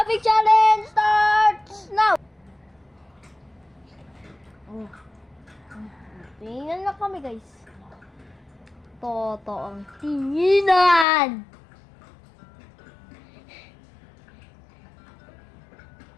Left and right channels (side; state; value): right; drops out; at 11.1 s